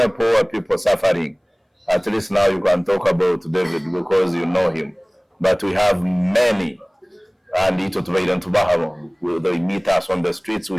poor people suffering. At least now you can talk about David because you know him, but we have many, and they meet us on the streets,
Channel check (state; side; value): identical; both; correlation 1.00